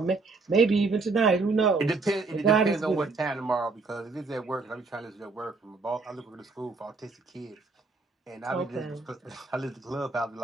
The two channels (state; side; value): quieter; left; 3.9 dB